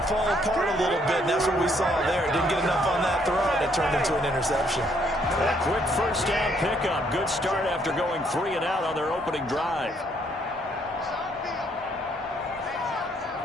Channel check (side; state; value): both; normal; correlation 0.69